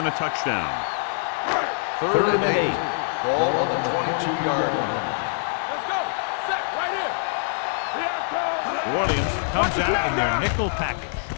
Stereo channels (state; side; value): silent; right; digital silence